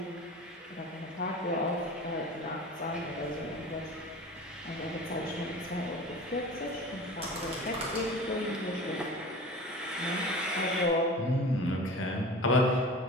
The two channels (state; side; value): normal; both; correlation 0.37